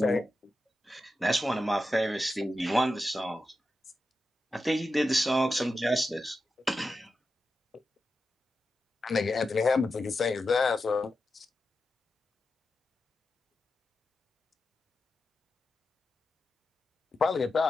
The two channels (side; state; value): both; normal; correlation 0.90